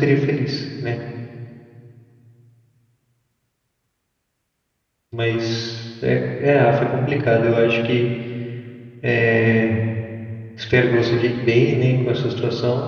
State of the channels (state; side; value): identical; both; correlation 1.00